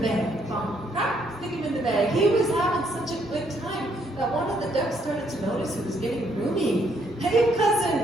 bag. Bump, crack, stick him in the bag. He was having such a good time that one of the ducks started to notice he was getting roomy. Hey,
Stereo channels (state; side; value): normal; both; correlation 0.70